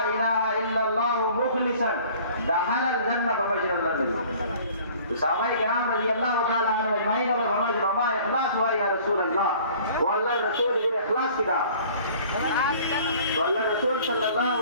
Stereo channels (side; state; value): both; inverted; correlation -0.51